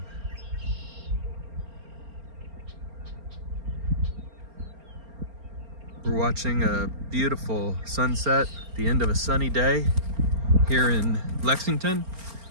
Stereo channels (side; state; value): left; late; 4.3 ms